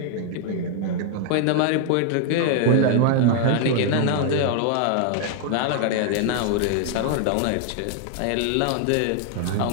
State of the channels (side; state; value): both; different; correlation 0.00